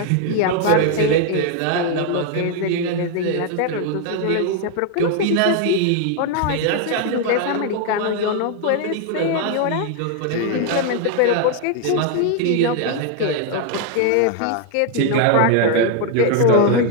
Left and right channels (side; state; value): both; different; correlation 0.01